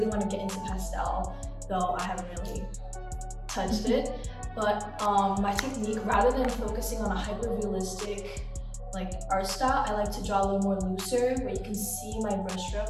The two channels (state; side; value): identical; both; correlation 1.00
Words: want to get into pastel, though I haven't really touched it. But my technique, rather than focusing on a hyper-realistic like art style, I like to draw a little more looser, where you can see my